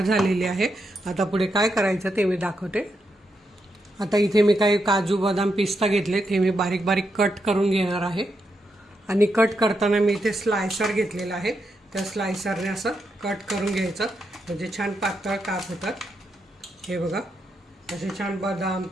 झालेली आहे. आता पुढे काय करायचं ते मी दाखवते. आता इथे मी काही काजू बदाम पिस्ता घेतले, ते मी बारीक बारीक कट करून घेणार आहे आणि कट करताना मी इथे स्लायसर घेतलेला आहे. त्या स्लायसरने असं कट करून घ्यायचं म्हणजे छान पातळ काप होतात. हे बघा असे छान बदाम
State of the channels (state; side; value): normal; both; correlation 0.83